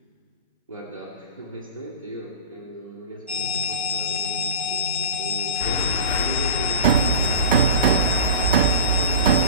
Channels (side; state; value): both; inverted; correlation -0.31